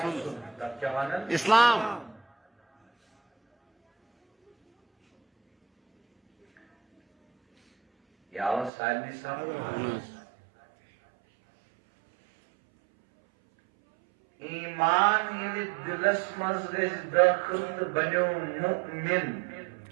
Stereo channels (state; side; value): drops out; left; at 8.7 s